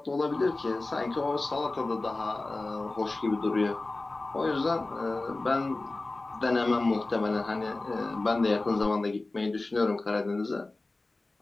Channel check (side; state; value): right; quieter; 3.1 dB